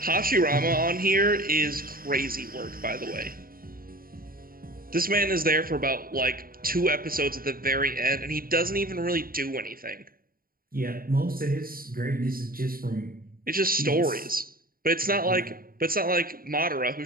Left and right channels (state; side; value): late; left; 0.42 ms